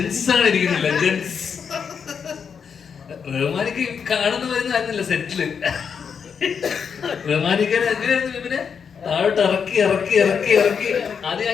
കാണുന്ന വരുന്നല്ല സെറ്റില്. പിന്നെ താഴോട്ട് ഇറക്കി ആദ്യം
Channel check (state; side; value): quieter; right; 6.6 dB